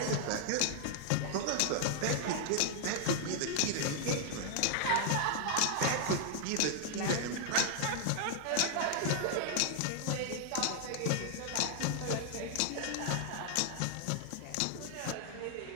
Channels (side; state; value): both; different; correlation -0.01